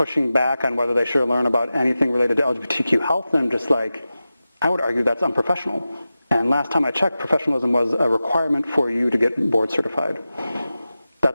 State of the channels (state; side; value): inverted; both; correlation -0.94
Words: back on whether they should learn about anything related to LGBTQ health, and I'm just like, I would argue that's unprofessional. And last time I checked, professionalism was a requirement for you to get board certified.